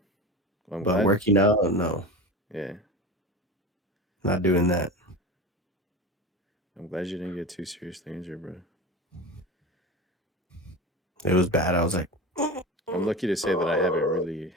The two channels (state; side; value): normal; both; correlation 0.29